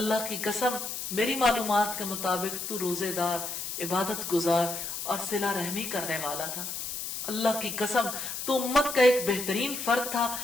کی قسم میری معلومات کے مطابق تو روزے دار، عبادت گزار اور صلہ رحمی کرنے والا تھا، اللہ کی قسم تو امت کا ایک بہترین فرد تھا۔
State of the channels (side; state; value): left; noise; hiss, 5 dB below the sound